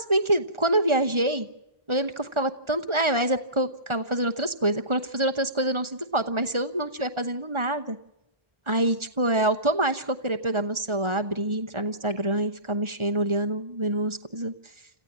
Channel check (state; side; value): late; left; 1.4 ms